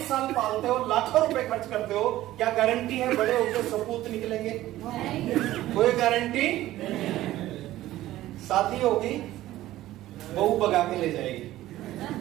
साल पालते हो, लाखों रुपए खर्च करते हो। क्या गारंटी है बड़े होकर सपूत निकलेंगे? कोई गारंटी? शादी होगी, बहू भगा के ले जाएगी।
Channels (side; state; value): left; quieter; 15.1 dB